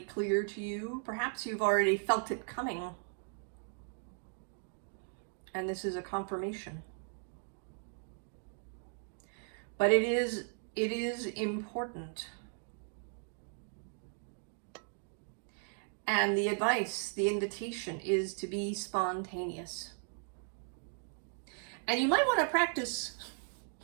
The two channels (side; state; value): left; silent; 53 dB below the other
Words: clear to you, perhaps you've already felt it coming. And this is a confirmation. But it is important. And the advice, the invitation is to be spontaneous. And you might want to practice